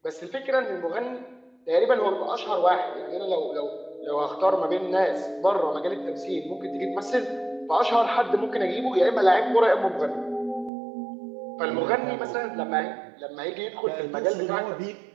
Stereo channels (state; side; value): drops out; left; at 10.7 s